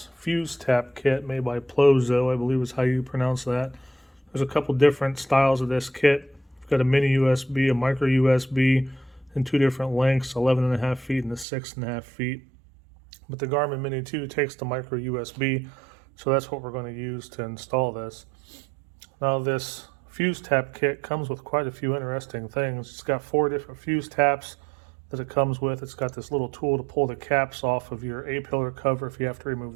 fuse tap kit made by Plozo, I believe is how you pronounce that. There's a couple different styles of this kit. We've got a mini USB, a micro USB, in two different lengths, 11.5 feet and a 6.5 feet. But the Garmin Mini 2 takes the micro USB, so that's what we're going to use to install this. Now this fuse tap kit comes with quite a few interesting things. It's got 4 different fuse taps that it comes with. It's got this little tool to pull the caps off of your A-pillar cover if you have to remove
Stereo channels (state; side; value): drops out; left; at 11.5 s